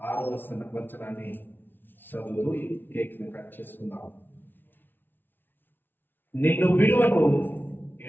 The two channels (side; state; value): right; late; 0.096 ms